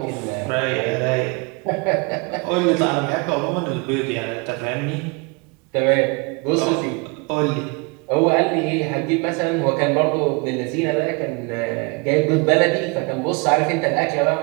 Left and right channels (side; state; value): left; quieter; 29.9 dB